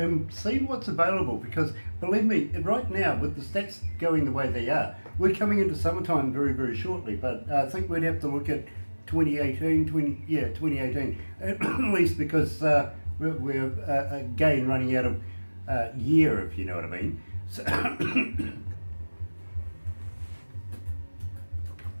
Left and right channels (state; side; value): inverted; both; correlation -1.00